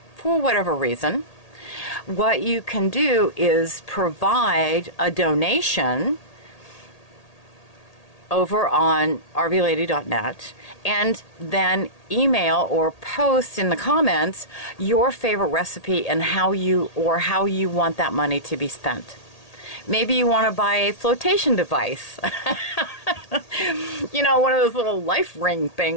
for whatever reason, what you can do is provide a donation over on rvlady.net, and then email or post in the comments your favorite recipe and how you want that money to be spent. Maybe you want to buy a flotation device. One of those little life ring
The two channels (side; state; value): right; late; 1.8 ms